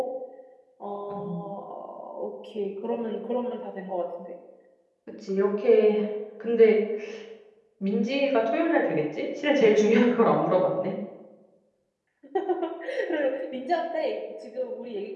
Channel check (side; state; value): both; identical; correlation 1.00